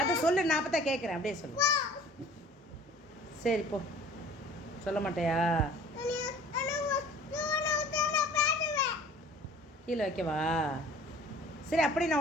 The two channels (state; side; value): normal; both; correlation 0.48